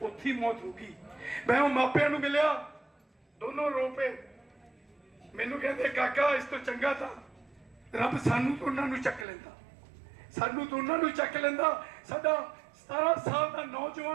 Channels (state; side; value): drops out; left; at 9.2 s